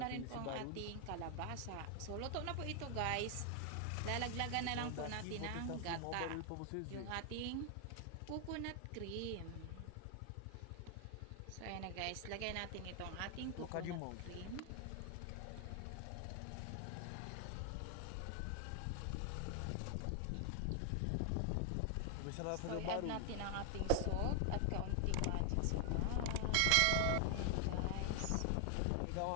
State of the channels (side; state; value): both; different; correlation 0.00